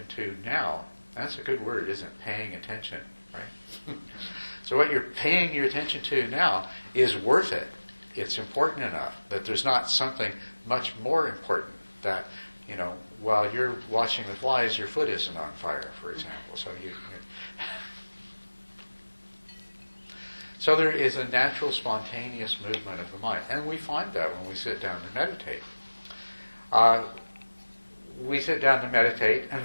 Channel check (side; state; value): both; inverted; correlation -1.00